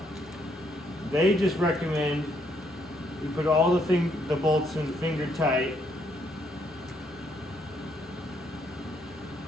they just recommend you put all the bolts in finger tight.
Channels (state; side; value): normal; both; correlation 0.72